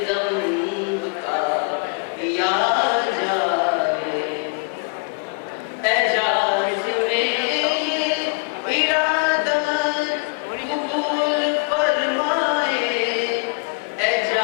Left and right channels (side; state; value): right; quieter; 33.4 dB